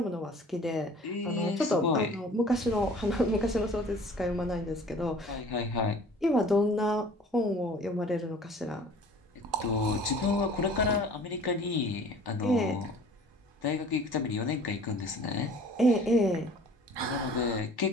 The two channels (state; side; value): normal; both; correlation 0.48